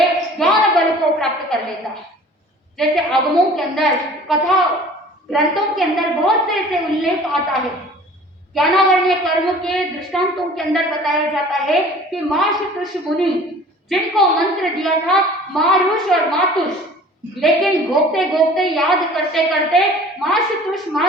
ज्ञान बल को प्राप्त कर लेता है। जैसे आगमों के अंदर, कथा ग्रंथों के अंदर बहुत से ऐसे उल्लेख आता है, ज्ञानावरणीय कर्म के दृष्टांतों के अंदर बताया जाता है कि माशतुष मुनि जिनको मंत्र दिया था मारुष और मातुष, लेकिन घोपते घोपते याद करते करते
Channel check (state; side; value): normal; both; correlation 0.46